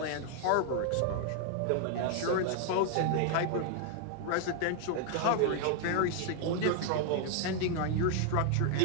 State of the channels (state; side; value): different; both; correlation 0.00